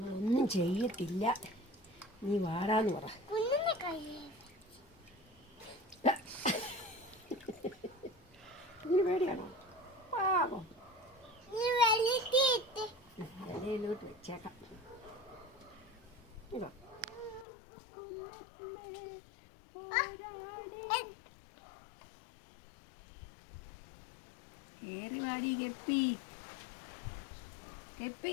ചെയ്യത്തില്ല. നീ വാടാന്ന് പറ. ഇതിന് പേടിയാണോ? പാവം. ഇലയിലോട്ട് വെച്ചേക്കാം. ഇതാ കേറി വാടി. കെപ്പി കെപ്പി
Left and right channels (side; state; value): right; drops out; at 17.4 s